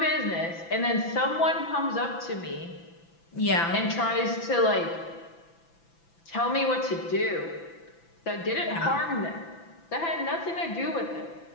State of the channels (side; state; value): right; late; 6.0 ms